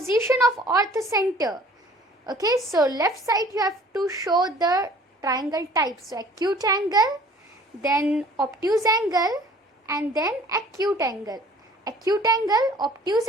of orthocenter. Okay, so left side you have to show the triangle type. So acute angle, then obtuse angle, and then acute angle. Acute angle, obtuse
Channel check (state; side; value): normal; both; correlation 0.52